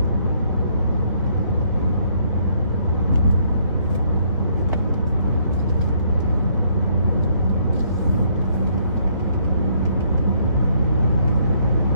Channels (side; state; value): both; inverted; correlation -0.68